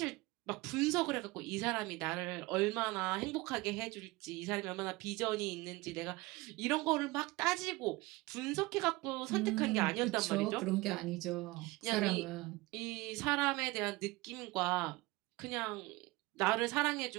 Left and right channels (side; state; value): left; quieter; 21.7 dB